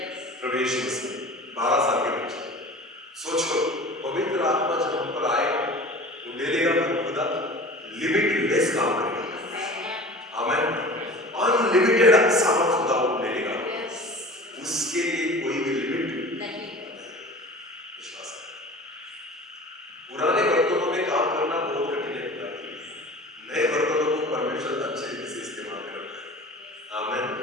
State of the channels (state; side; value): normal; both; correlation 0.40